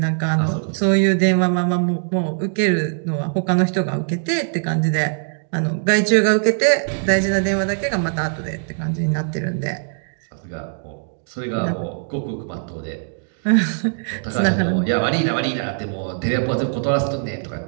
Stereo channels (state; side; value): silent; left; 65 dB below the other